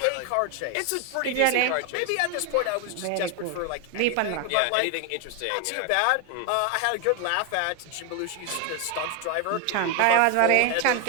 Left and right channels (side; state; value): both; different; correlation 0.01